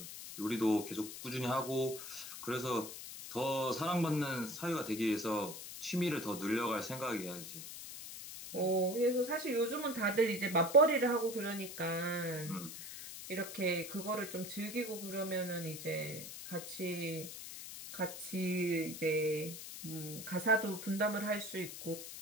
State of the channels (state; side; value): noise; left; hiss, 10 dB below the sound